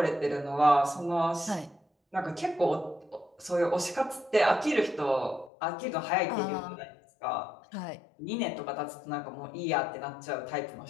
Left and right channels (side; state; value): right; drops out; at 5.5 s